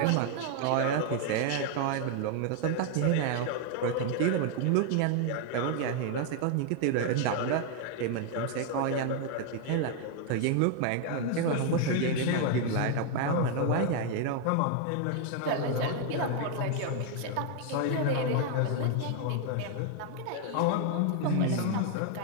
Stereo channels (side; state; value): both; different; correlation 0.00